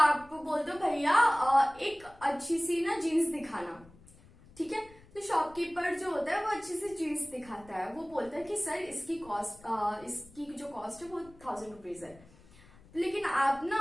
बोलते हो भैया एक अच्छी सी ना जीन्स दिखाना, ठीक है, तो शॉपकीपर जो होता है वो अच्छी सी जीन्स दिखाता है, वो बोलता है कि सर इसकी कॉस्ट इसकी जो कॉस्ट है वो 1000 रुपीज है, लेकिन आप ना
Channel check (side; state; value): left; noise; rumble, 24 dB below the sound